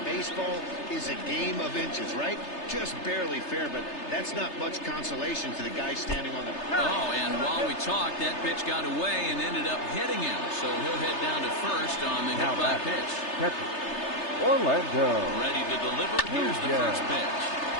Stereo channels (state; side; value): late; right; 3.3 ms